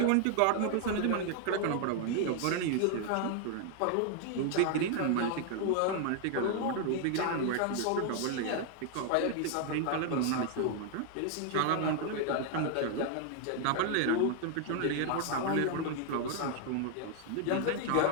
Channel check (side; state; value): both; different; correlation 0.00